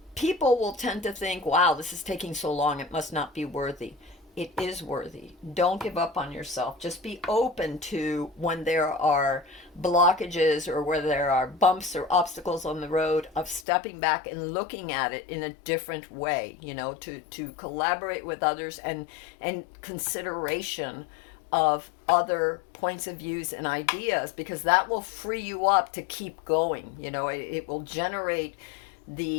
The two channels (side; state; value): right; drops out; at 13.7 s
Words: people will tend to think, wow, this is taking so long, it must not be worthy. it is worthy. Don't give up on yourself. Just be open to when there are blockages or where there are bumps or obstacles on the road, of stepping back and looking at it in a different way, to collaborate with others, and consideration of other points of views and ideas, because that will free you up to keep going. It will generate